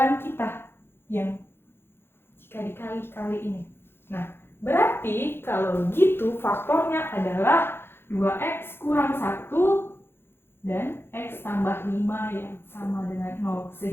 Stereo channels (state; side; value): late; right; 0.11 ms